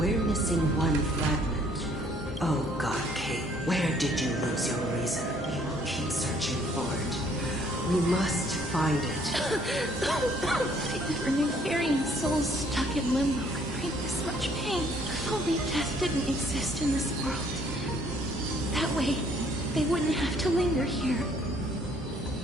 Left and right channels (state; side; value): normal; both; correlation 0.62